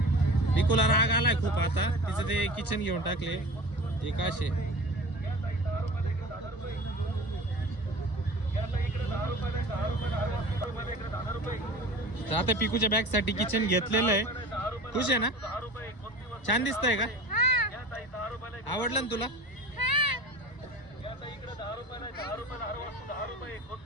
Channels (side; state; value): right; late; 1.0 ms